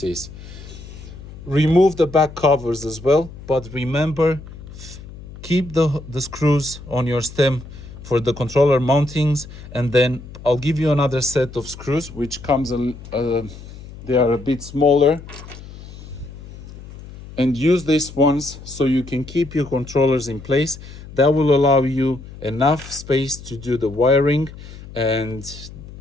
Remove the back covers as well, but remember, keep the screws on your stem for the controller mountings, and then I'll give you another set of screws which comes they are a bit smaller, and use these ones so you can keep your controllers in place. That will allow you enough space to do the wiring, and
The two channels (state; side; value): noise; left; hum, 15 dB below the sound